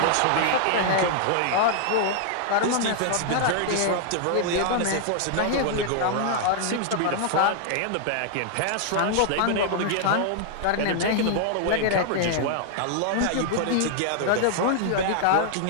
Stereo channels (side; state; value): both; different; correlation -0.01